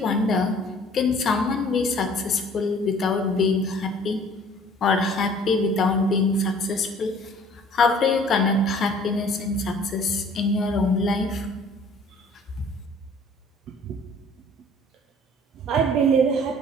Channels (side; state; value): both; normal; correlation 0.53